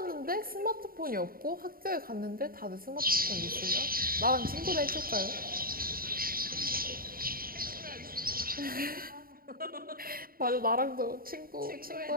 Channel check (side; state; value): left; late; 0.42 ms